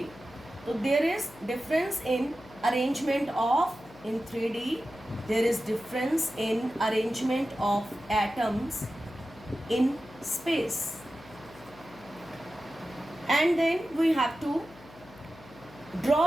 so there is difference in arrangement of, in 3D there is difference in arrangement of atoms in space. And then we have to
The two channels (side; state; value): left; noise; hum, 21 dB below the sound